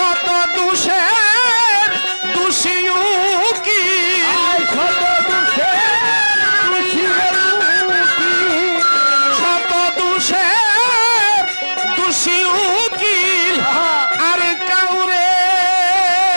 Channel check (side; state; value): both; inverted; correlation -1.00